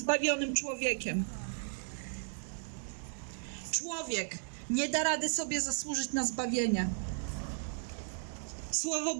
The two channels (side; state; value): left; silent; digital silence